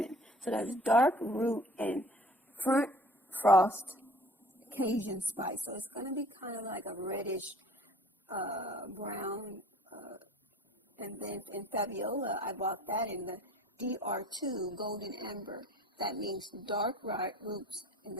So that's dark root and front frost Cajun spice. So it's going to be kind of like a reddish brown, and then in Fabiola, I bought that in the DR2 golden amber. That means dark roots, and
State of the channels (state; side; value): normal; both; correlation 0.49